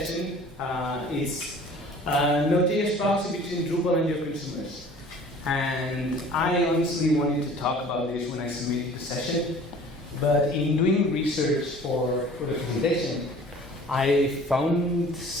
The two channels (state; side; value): normal; both; correlation 0.48